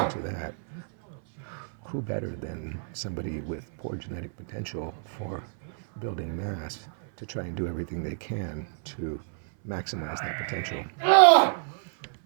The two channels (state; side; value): silent; left; 58 dB below the other